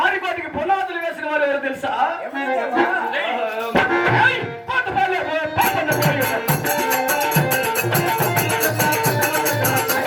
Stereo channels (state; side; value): identical; both; correlation 1.00